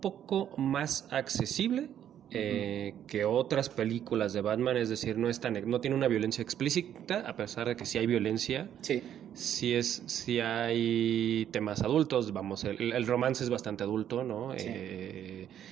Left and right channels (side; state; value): left; quieter; 10.2 dB